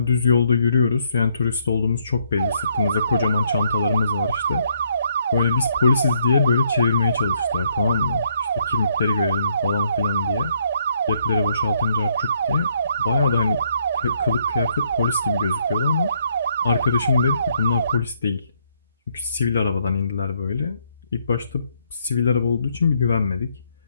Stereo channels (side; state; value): both; inverted; correlation -0.71